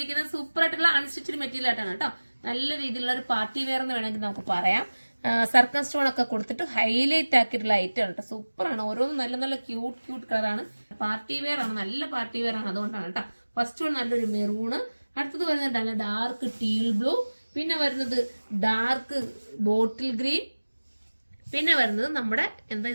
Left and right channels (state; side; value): inverted; both; correlation -1.00